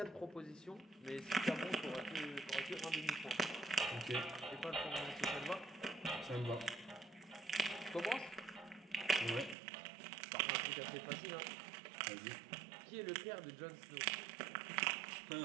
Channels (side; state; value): left; drops out; at 9.6 s